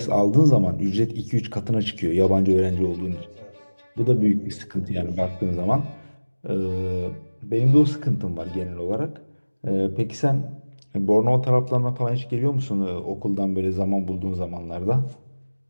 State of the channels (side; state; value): both; inverted; correlation -1.00